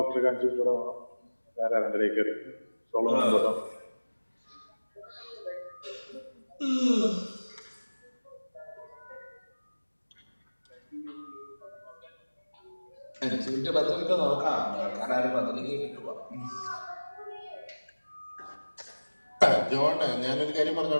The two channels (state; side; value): inverted; both; correlation -1.00